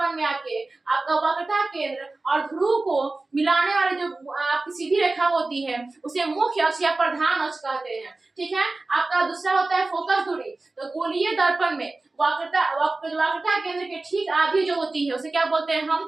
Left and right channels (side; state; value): left; quieter; 3.3 dB